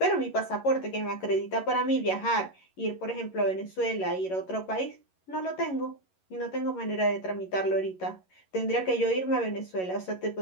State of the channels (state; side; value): late; right; 11 ms